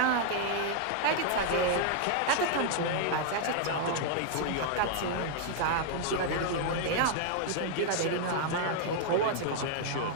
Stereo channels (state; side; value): different; both; correlation 0.00